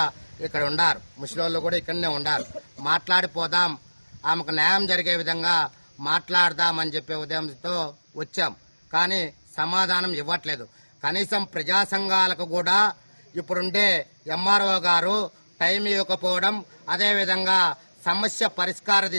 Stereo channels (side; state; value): both; inverted; correlation -1.00